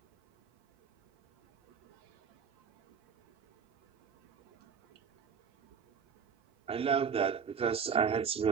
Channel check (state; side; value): quieter; left; 6.6 dB